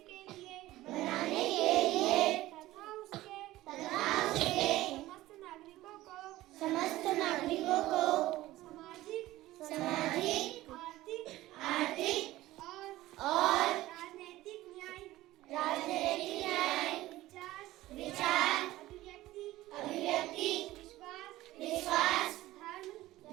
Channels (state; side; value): quieter; left; 16.6 dB